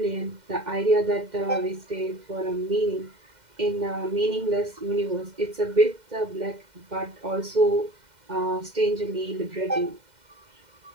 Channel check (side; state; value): left; late; 2.1 ms